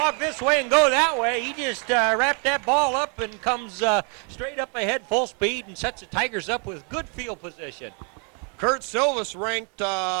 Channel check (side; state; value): left; quieter; 37.6 dB